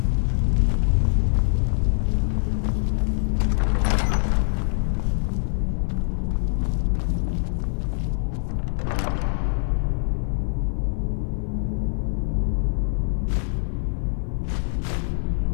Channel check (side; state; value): right; silent; 55 dB below the other